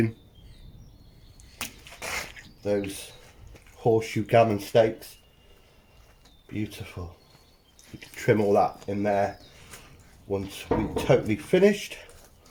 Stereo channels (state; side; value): identical; both; correlation 1.00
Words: Those horseshoe gammon steaks, Beautiful. You can trim all that in there once we're totally finished.